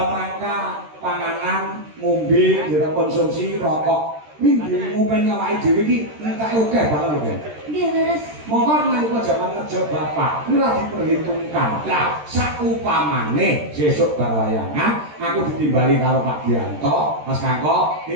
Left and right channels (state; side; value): late; left; 13 ms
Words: rangka panganan, ngombe, konsumsi rokok. Minggu ngumpen awake dhewe iki entake akeh banget lho, Kan. Nggih, leres. Monggo nalika jaman ngejo Bapak, kuwi ora diperhitungkan. Lah, sakupamane sesuk bar wayangan aku ditimbali karo Pak Dianto, Mas Kangko,